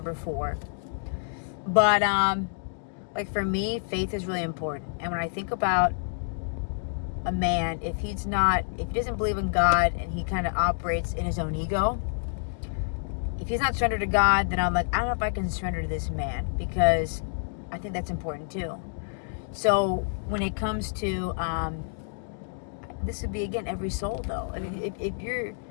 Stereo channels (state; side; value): silent; right; digital silence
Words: 4. But, like for me, faith is really important. And when I think about a man, if he doesn't believe in God and he kind of operates in his own ego, if he's not surrendered to God, then I'm like, I don't know if I can surrender to this man, because I think that's important too. So when it comes to, this would be, again, every soul though. I mean, if you